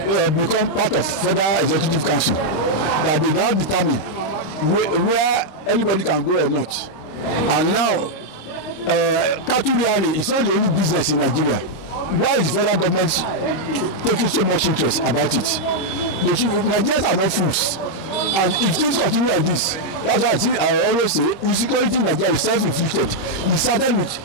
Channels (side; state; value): right; late; 26 ms